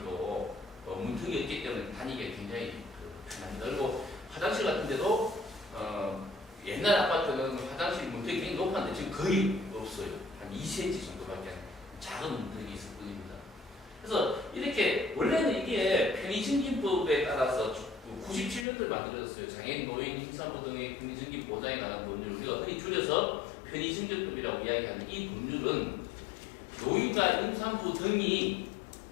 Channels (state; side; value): drops out; right; at 18.7 s